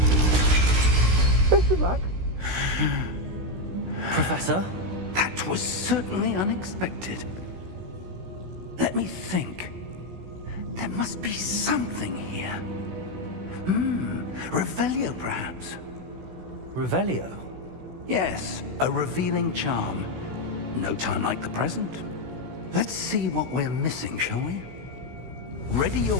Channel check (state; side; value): late; left; 16 ms